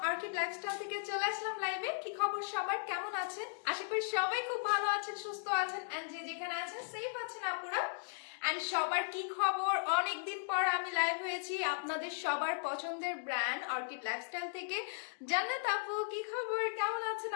orchid lifestyle থেকে চলে আসলাম লাইভে। কি খবর সবার, কেমন আছেন? আশা করি সবাই খুব ভালো আছেন, সুস্থ আছেন এন্ড যে যেখানে আছেন সেফ আছেন আপুরা। এন্ড সবার কি খবর? অনেকদিন পর আমি লাইভ হয়েছি আপনাদের সবার পছন্দের ব্র্যান্ড অর্কিড লাইফস্টাইল থেকে। জান্নাত আপু কি খবর, কেমন আছেন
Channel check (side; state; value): right; silent; digital silence